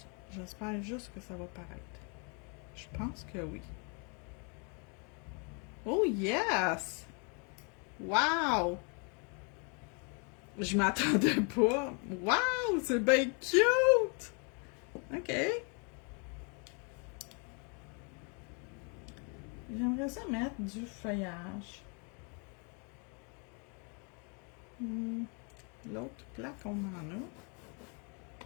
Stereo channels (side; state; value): right; quieter; 36.3 dB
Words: j'espère juste que ça va paraître. Je pense que oui. Oh yes! Wow! Je m'attendais pas. Wow! C'est bien cute! OK. J'aimerais ça mettre du feuillage. L'autre plaque, on en a.